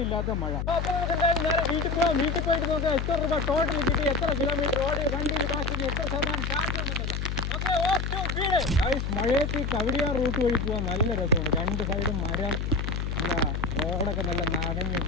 മഴ. അപ്പോൾ നമുക്ക് എന്തായാലും നേരെ വീട്ടിൽ പോകാം. വീട്ടിൽ പോയിട്ട് നോക്കാം എത്ര രൂപ ടോട്ടൽ കിട്ടി, എത്ര കിലോമീറ്റർ ഓടി, വണ്ടി ഇതാക്കി, എത്ര ശതമാനം ചാർജ് ഉണ്ടെന്ന്. മഴയത്ത് കവടിയാർ റൂട്ട് വഴി പോകാൻ നല്ല രസമാണ്. 2 സൈഡും മരം, നല്ല റോഡൊക്കെ നല്ല നനഞ്ഞ്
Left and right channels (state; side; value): noise; left; hum, 2 dB below the sound